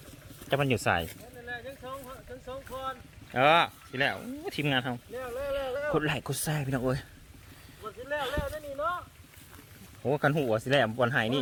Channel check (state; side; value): identical; both; correlation 1.00